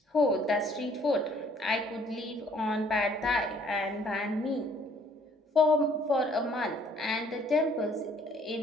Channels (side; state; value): both; normal; correlation 0.60